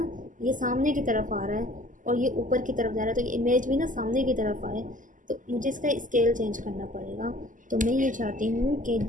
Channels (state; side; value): late; left; 0.38 ms